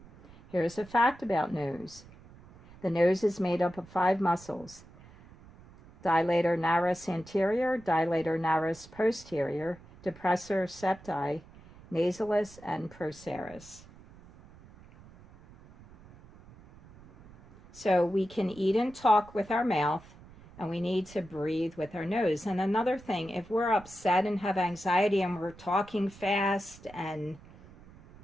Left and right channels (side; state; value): right; noise; rumble, 22 dB below the sound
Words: Here's a fact about nose. The nose is made up of 5 muscles: dilator naris anterior, dilator naris posterior, depressor septi, nasalis, and procerus. So we can eat and talk with our mouth, and we need to breathe with our nose. And another thing, if we're upset and have anxiety and we're talking fast, and